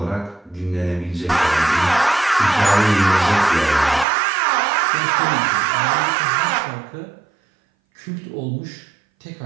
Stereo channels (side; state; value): left; drops out; at 4.0 s